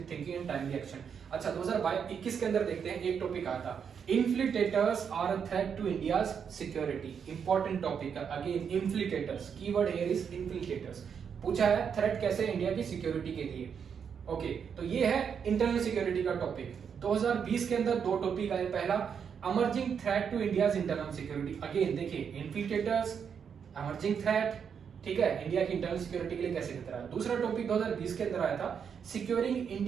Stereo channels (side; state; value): left; quieter; 7.1 dB